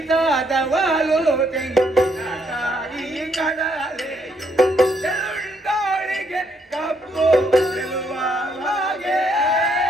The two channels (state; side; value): normal; both; correlation 0.72